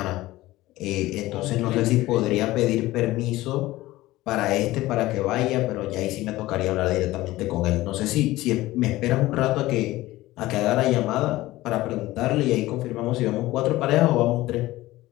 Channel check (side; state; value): right; quieter; 17.6 dB